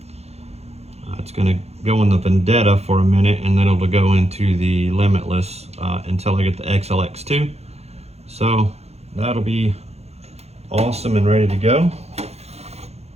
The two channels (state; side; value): late; left; 0.31 ms